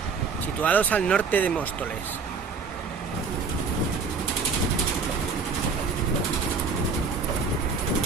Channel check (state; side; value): quieter; left; 4.9 dB